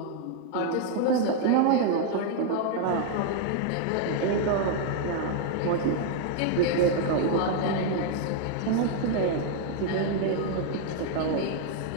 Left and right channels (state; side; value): different; both; correlation 0.00